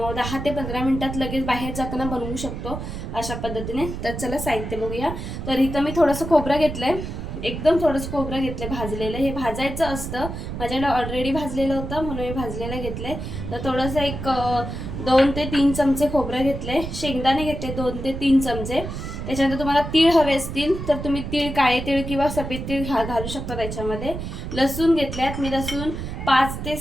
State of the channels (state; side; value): noise; right; rumble, 6 dB below the sound